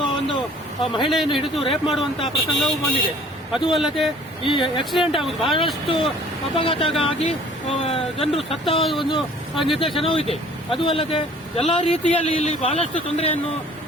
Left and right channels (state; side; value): normal; both; correlation 0.52